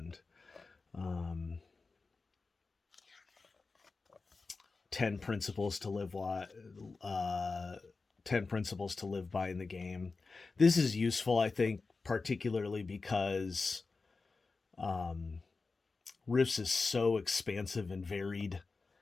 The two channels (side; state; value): right; quieter; 4.1 dB